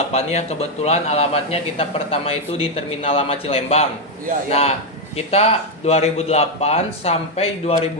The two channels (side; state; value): both; normal; correlation 0.04